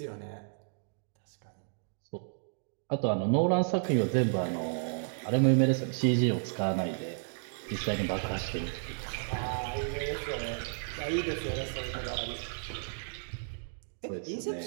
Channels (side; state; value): left; silent; digital silence